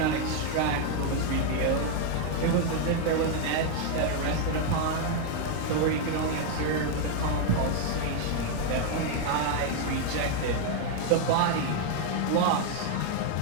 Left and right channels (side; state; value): both; different; correlation 0.00